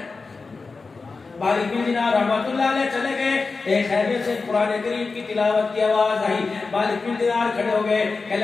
مالک بن دینار رحمۃ اللہ علیہ چلے گئے، ایک خیمے سے قرآن کریم کی تلاوت کی آواز آئی، مالک بن دینار کھڑے ہو گئے،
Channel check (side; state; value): right; quieter; 4.2 dB